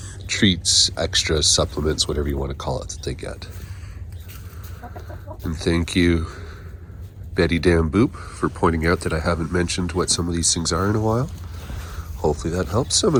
treats, extras, supplements, whatever you want to call it, that they get. And thank you, Betty Dan Boop, for pointing out that I haven't mentioned what some of these things are in a while. Hopefully that helps some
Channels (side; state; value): both; identical; correlation 1.00